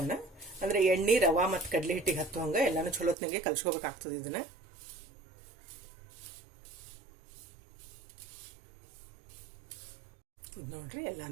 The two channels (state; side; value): drops out; left; at 3.2 s